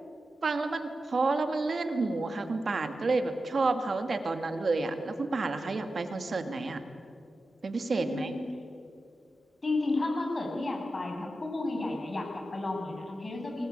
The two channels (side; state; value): both; normal; correlation 0.91